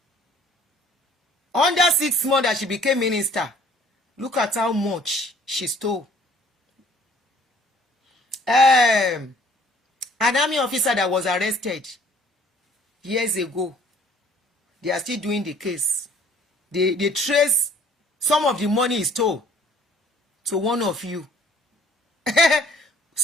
Under 6 months that she became minister. Look at how much she stole. An army officer that was arrested years ago. They are still doing the case. They trace some of the money he stole to one of you.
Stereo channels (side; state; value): both; normal; correlation 0.57